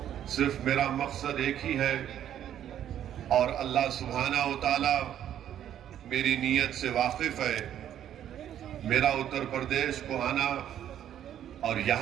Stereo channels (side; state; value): left; quieter; 10.6 dB